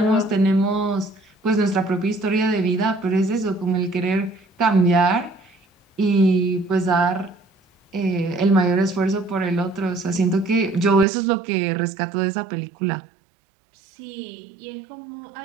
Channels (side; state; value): left; drops out; at 11.1 s